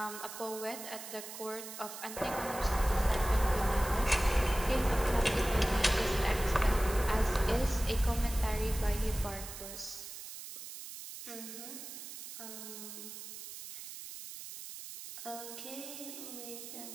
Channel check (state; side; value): noise; right; hiss, 11 dB below the sound